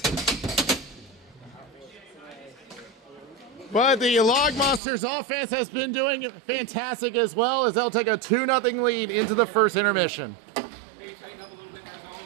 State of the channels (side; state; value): left; drops out; at 4.8 s